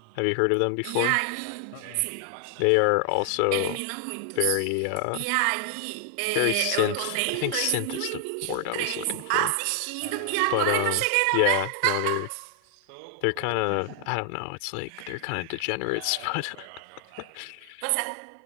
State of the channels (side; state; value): both; different; correlation 0.00